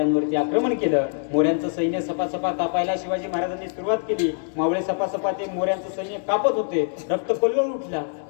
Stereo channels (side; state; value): right; silent; digital silence